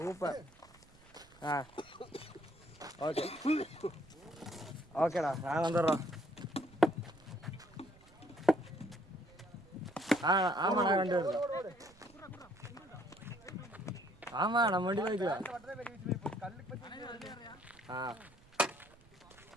Okay ஓகேடா, நான் வந்துடுறோம். ஆமாண்ணா, ரெண்டு பேர். ஆமா, நம்ம வண்டி போய்க்கலாம்.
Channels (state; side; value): noise; right; rumble, 26 dB below the sound